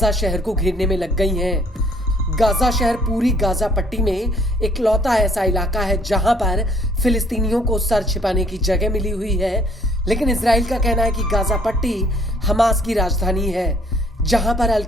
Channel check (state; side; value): normal; both; correlation 0.62